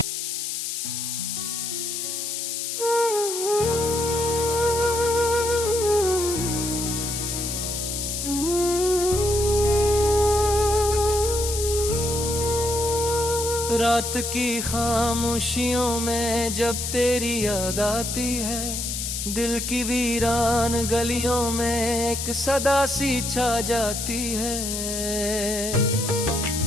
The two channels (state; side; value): noise; left; hiss, 3 dB below the sound